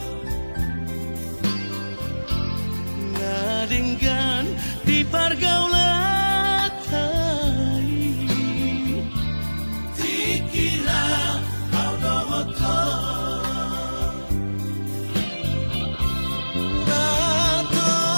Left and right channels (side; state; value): both; inverted; correlation -1.00